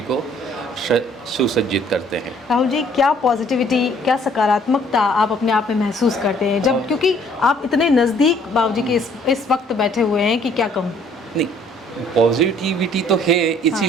को सुसज्जित करते हैं। राहुल जी, क्या पॉजिटिविटी, क्या सकारात्मकता आप अपने आप में महसूस करते हैं जब, क्योंकि आप इतने नज़दीक बाबूजी के इस वक्त बैठे हुए हैं कि क्या कहूँ? नहीं, पॉजिटिविटी तो है,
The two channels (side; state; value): both; normal; correlation 0.60